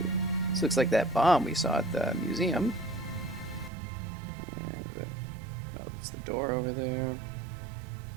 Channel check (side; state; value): left; drops out; at 3.7 s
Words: this looks like that bomb we saw at the museum. And, oh, it's the door over there.